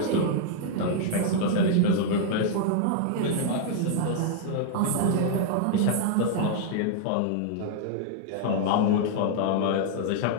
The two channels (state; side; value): different; both; correlation -0.01